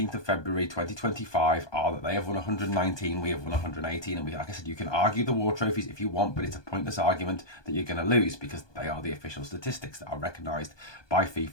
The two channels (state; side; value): late; right; 1.2 ms